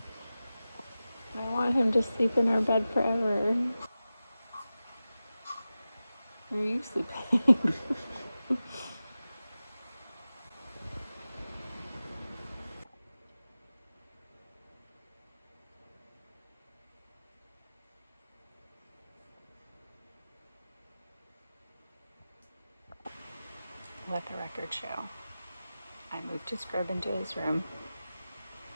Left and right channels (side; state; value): both; inverted; correlation -0.95